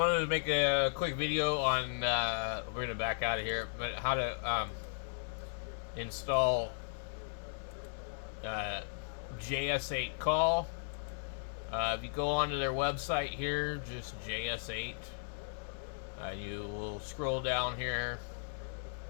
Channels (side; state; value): right; silent; digital silence